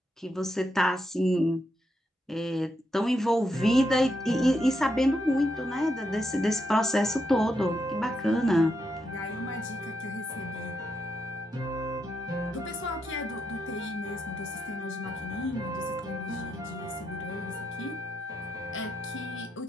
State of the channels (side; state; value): both; normal; correlation 0.82